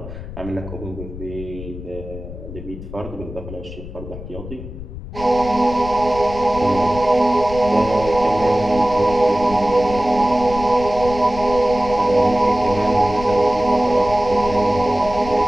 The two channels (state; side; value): noise; left; rumble, 11 dB below the sound